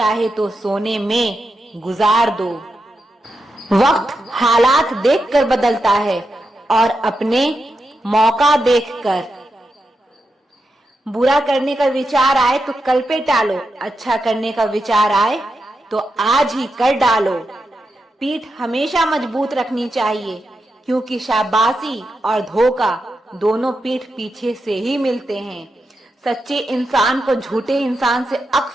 तो सोने में गुजार दो। वक्त हालात देखकर बदलता है और अपने मौका देखकर। बुरा करने का विचार आए तो कल पे टालो, अच्छा करने का विचार आए तो आज ही कर डालो। पीठ हमेशा मजबूत रखनी चाहिए क्योंकि शाबाशी और धोखा दोनों पीठ पीछे से ही मिलते हैं। सच्चे इंसान को झूठे इंसान से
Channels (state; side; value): normal; both; correlation 0.87